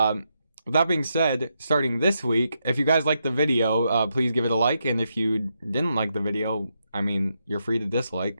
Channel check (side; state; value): both; inverted; correlation -0.82